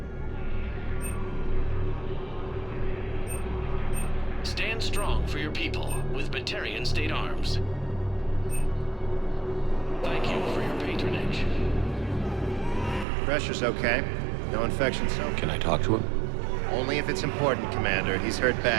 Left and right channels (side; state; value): left; drops out; at 13.1 s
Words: Stand strong for your people with Batarian State Arms. Thank you for your patronage. Pressure's okay. No infection, so. Can I talk to him? Only if it's important, Commander. He's hurt